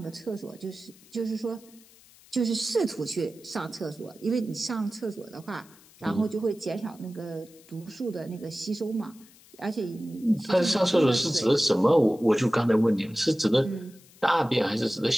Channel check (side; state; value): left; noise; hiss, 26 dB below the sound